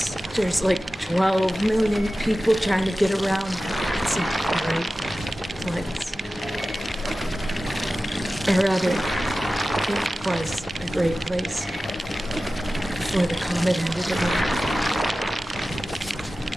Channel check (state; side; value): normal; both; correlation 0.95